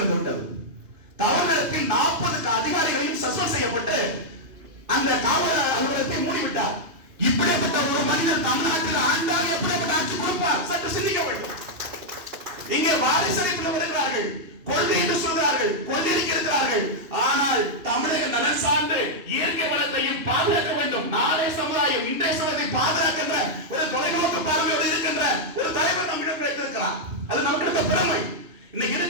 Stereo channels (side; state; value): left; late; 2.8 ms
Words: விட்டது. தவறு நடத்தி 40 அதிகாரிகளையும் சஸ்பெண்ட் செய்யப்பட்டு அந்த காவல் அலுவலகத்தை மூடிவிட்டார். இப்படிப்பட்ட ஒரு மனிதர் தமிழ்நாட்டில் ஆண்டால் எப்படிப்பட்ட ஆட்சி கொடுப்பார்? சற்று சிந்திக்க வேண்டும். இங்கே வாரிசு வருகிறார்கள், கொள்கை என்று சொல்கிறார்கள், கொள்கைக்கு இருக்கிறார்கள். ஆனால் தமிழக நலன் சார்ந்து இயற்கை வளத்தையும் பாதுகாக்க வேண்டும். நாளை சமுதாயம் இன்றைய சமுதாயத்தை பாதுகாக்கின்ற ஒரு தொலைநோக்கு பார்வையோடு இருக்கின்ற ஒரு தலைவர் நம்மிடம் கிடைத்திருக்கிறார். அது நமக்கு இருக்க பெருமை. இன்னைக்கு